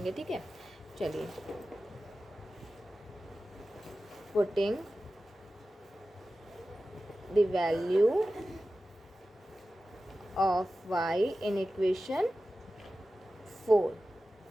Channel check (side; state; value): both; normal; correlation 0.94